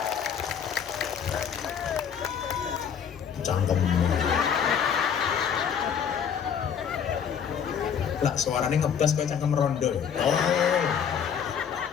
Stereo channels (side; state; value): right; quieter; 7.7 dB